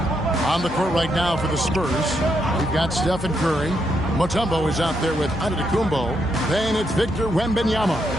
the court right now for the Spurs, we've got Stephen Curry. Mutombo is out there with Antetokounmpo. Then it's Victor Wembanyama.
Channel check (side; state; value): both; normal; correlation 0.79